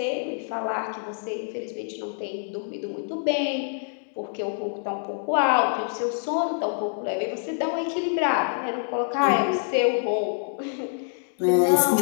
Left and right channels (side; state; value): right; silent; digital silence